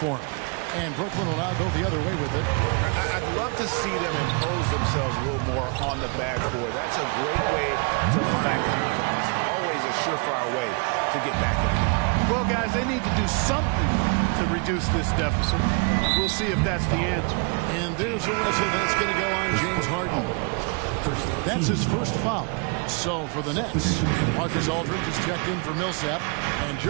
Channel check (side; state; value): left; quieter; 34.6 dB